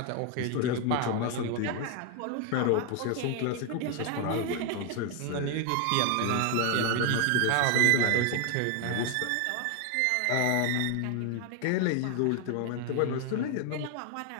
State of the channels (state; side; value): different; both; correlation 0.01